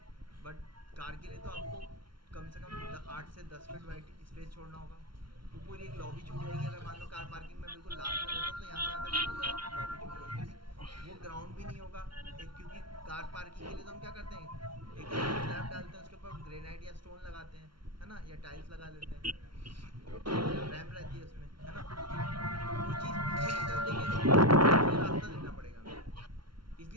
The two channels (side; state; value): left; late; 0.73 ms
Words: बट कार के लिए तो आपको कम से कम 8 से 10 फीट वाइड स्पेस छोड़ना होगा। वो पूरी एक लॉबी छूट जाएगी। अगर मान लो कार पार्किंग में बिल्कुल लास्ट में देता हूँ तो यहाँ से यहाँ तक पूरा लॉबी छूट जाएगी। वो ग्राउंड भी नहीं होगा एक, क्योंकि कार पार्किंग के लिए तो हम क्या करते हैं, एक हम स्लैब डालते हैं, उसके ऊपर ग्रेनाइट या स्टोन लगाते हैं, है ना, या टाइल्स लगा लेते हैं, रैम्प रहती है उसमें, है ना। वो चीज़ पीछे की तरफ देंगे तो उसके लिए रास्ता देना पड़ेगा हमें,